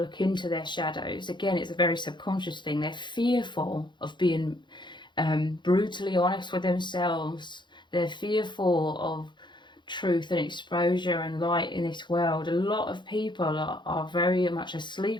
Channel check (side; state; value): right; late; 0.22 ms